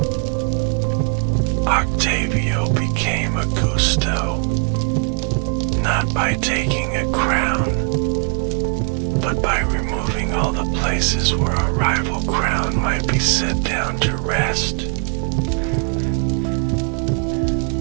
Octavio became Augusto, not by taking a crown, but by removing all the places where a rival crown might be set down to rest.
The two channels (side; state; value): left; quieter; 39.1 dB